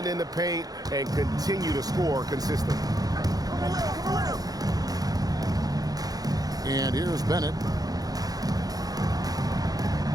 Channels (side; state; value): left; late; 0.18 ms